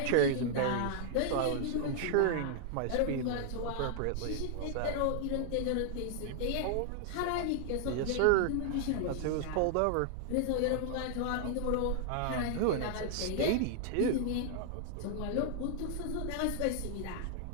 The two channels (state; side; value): different; both; correlation -0.01